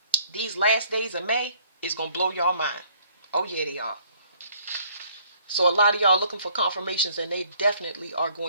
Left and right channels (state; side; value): inverted; both; correlation -0.62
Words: These last days of May is going to blow y'all mind. Oh yeah, they are. So a lot of y'all looking for confirmations, and they definitely are